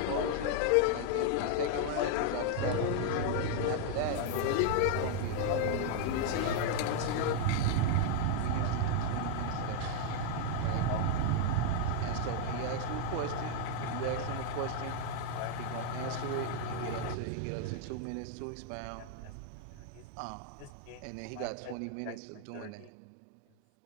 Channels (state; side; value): different; both; correlation 0.00